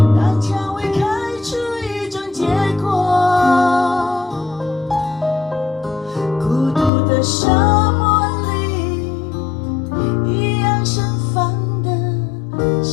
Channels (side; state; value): right; drops out; at 6.9 s